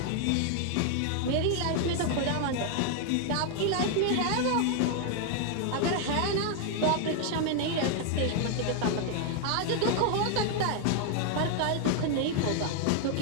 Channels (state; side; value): different; both; correlation 0.00